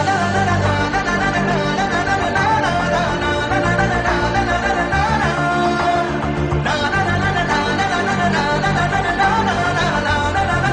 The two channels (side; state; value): both; identical; correlation 1.00